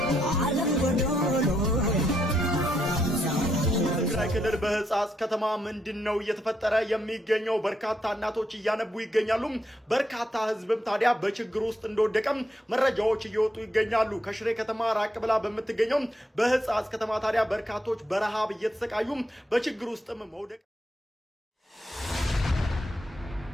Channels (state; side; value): normal; both; correlation 0.79